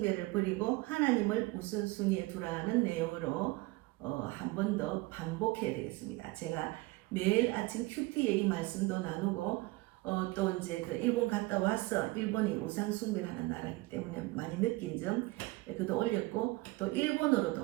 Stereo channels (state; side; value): quieter; left; 21.3 dB